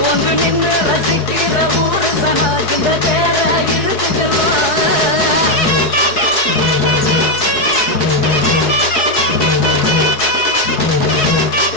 நின்று ரசிக்கிற ஊரு சனா இந்த தேர இழுத்து செல்லும்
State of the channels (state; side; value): late; right; 4.7 ms